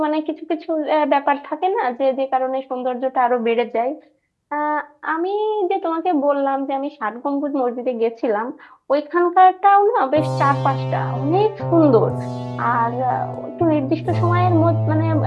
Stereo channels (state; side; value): identical; both; correlation 1.00